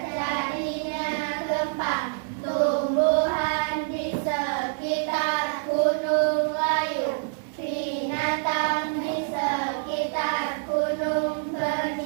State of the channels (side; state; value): left; silent; digital silence